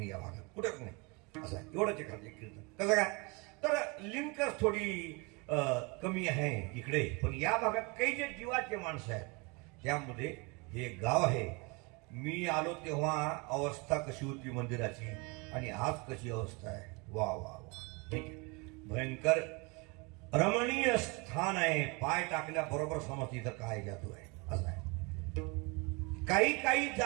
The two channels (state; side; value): quieter; left; 29.0 dB